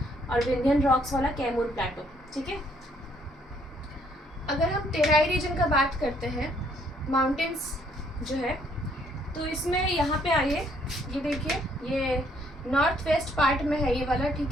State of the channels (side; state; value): both; normal; correlation 0.67